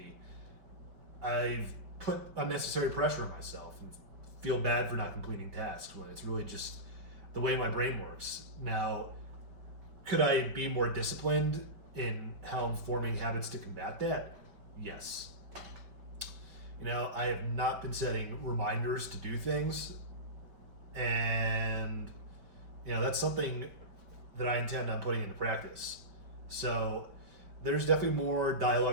I've put unnecessary pressure on myself and feel bad for not completing tasks when it's really just the way my brain works. Now, could I be more disciplined in how I'm forming habits to combat that? Yes. I have not been setting reminders to do things, and that's something that I intend on putting into practice. So there's definitely more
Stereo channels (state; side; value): late; left; 5.1 ms